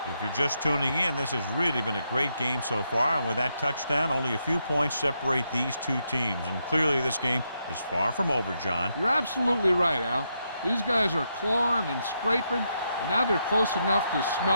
If you're just tuning in, this has really been a great game so far, and with that touchdown, only a few points separate these two teams, and clearly this game is far from over, John. You're absolutely right, Al. These guys are clawing and scraping, and now they're close enough to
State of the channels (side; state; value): both; inverted; correlation -0.81